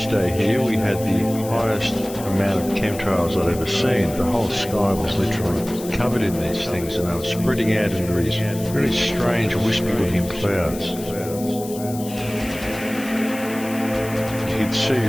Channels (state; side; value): noise; left; hiss, 14 dB below the sound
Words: here we had the highest amount of chemtrails I'd ever seen. The whole sky was literally covered in these things, and they were spreading out into these very strange wispy-looking clouds. You could see